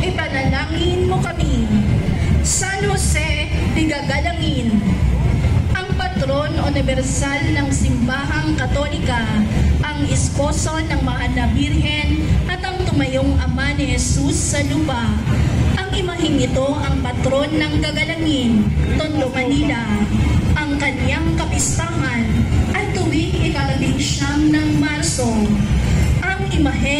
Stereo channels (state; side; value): identical; both; correlation 1.00